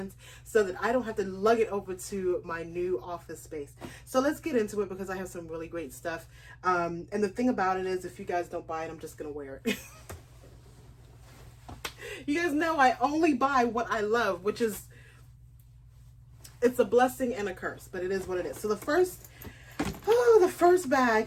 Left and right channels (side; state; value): both; identical; correlation 1.00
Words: so that I don't have to lug it over to my new office space. So let's get into it because I have some really great stuff. And the thing about it is if you guys don't buy it, I'm just going to wear it. You guys know I only buy what I love, which is, it's a blessing and a curse, but it is what it is. So the first